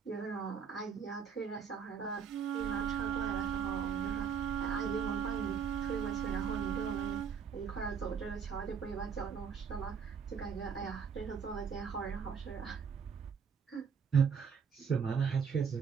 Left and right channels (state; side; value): quieter; left; 6.7 dB